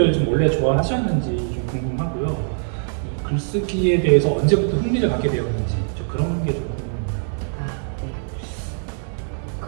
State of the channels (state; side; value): silent; left; 64 dB below the other